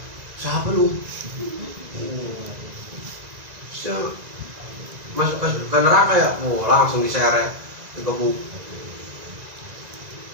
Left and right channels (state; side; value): late; left; 1.9 ms